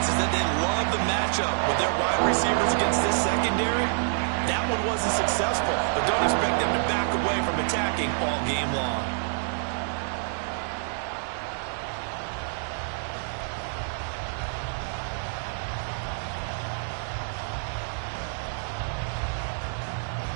is that they love the matchup with their wide receivers against this secondary. That one wasn't successful, but don't expect them to back away from attacking all game long.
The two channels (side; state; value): left; silent; digital silence